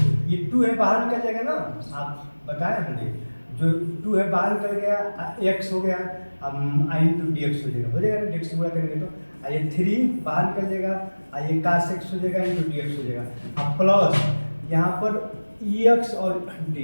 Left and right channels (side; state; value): both; inverted; correlation -1.00